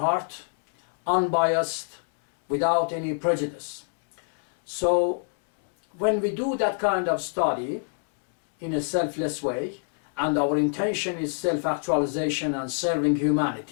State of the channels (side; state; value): right; silent; 61 dB below the other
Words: unbiased, without any prejudice. So when we do that kind of study in a selfless way, and our intention is self-actualization and serving